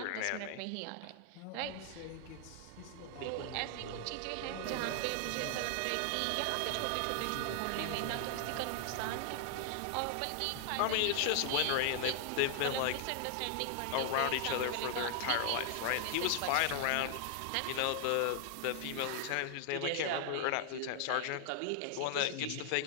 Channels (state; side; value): different; both; correlation 0.00